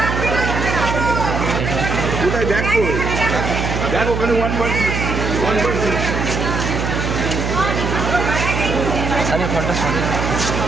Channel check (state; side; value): noise; right; hum, 2 dB below the sound